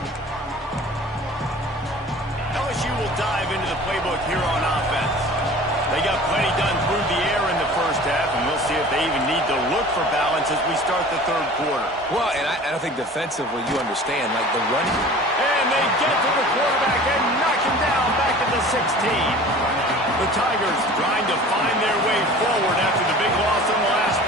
LSU will dive into the playbook here on offense. They got plenty done through the air in the first half, and we'll see if they even need to look for balance as we start the third quarter. Well, and I think defensively, you understand, like the run. And they get to the quarterback and knock him down back at the 16. The Tigers trying to find their way forward after the big loss on the last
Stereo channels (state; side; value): normal; both; correlation 0.43